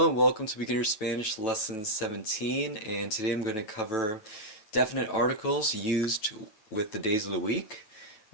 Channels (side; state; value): right; late; 9.2 ms